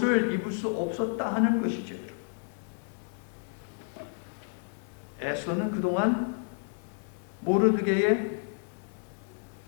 입을 수 없었다 하는 것이죠. 에스더는 그동안 모르드게의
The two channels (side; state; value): right; silent; 57 dB below the other